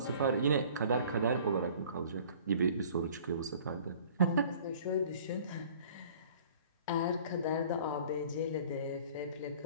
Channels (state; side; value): inverted; both; correlation -0.50